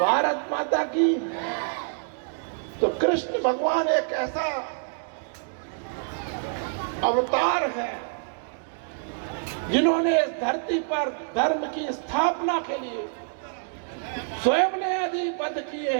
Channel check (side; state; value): left; silent; digital silence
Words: माता की। तो कृष्ण भगवान एक ऐसा अवतार है जिन्होंने इस धरती पर धर्म की स्थापना के लिए स्वयं ने आदि पद किए